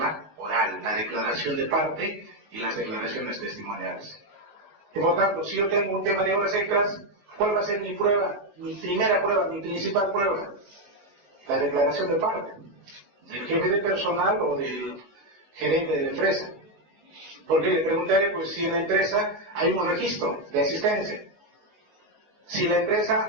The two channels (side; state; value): left; late; 19 ms